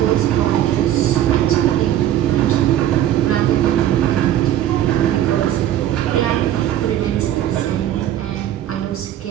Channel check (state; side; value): quieter; left; 11.9 dB